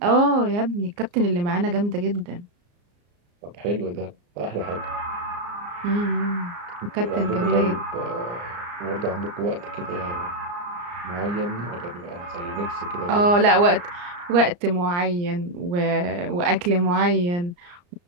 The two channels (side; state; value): left; late; 34 ms